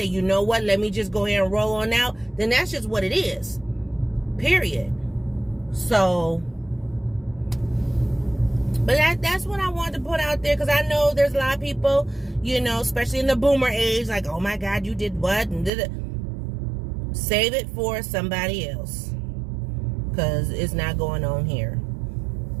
you know what, let me just go ahead and roll on out, then that's just what it is. Period. So, but that's what I wanted to put out there, because I know there's a lot of people, you know, especially in the boomer age, like, oh my God, you did what and did it. Save it for somebody else, because it's not going on here.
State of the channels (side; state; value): left; drops out; at 15.7 s